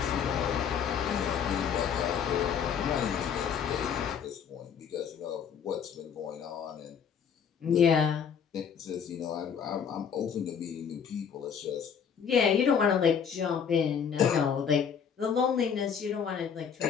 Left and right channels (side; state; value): right; quieter; 7.3 dB